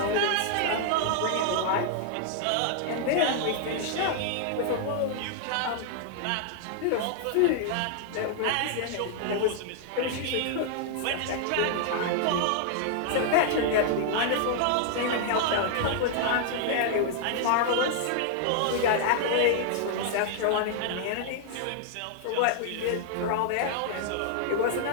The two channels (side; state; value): both; different; correlation 0.00